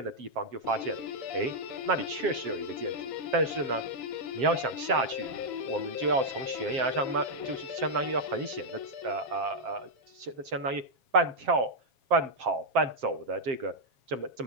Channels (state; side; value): late; left; 7.6 ms